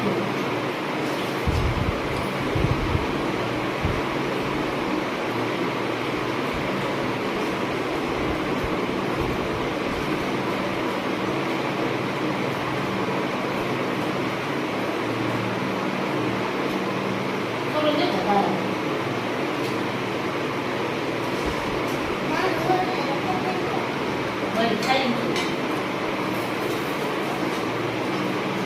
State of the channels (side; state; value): both; identical; correlation 1.00